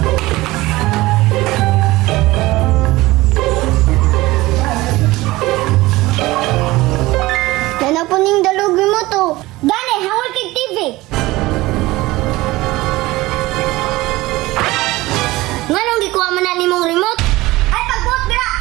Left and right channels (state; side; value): quieter; left; 19.3 dB